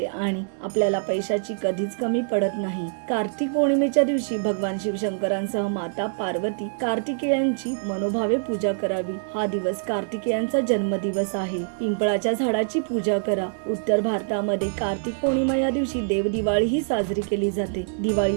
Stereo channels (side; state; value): left; silent; 62 dB below the other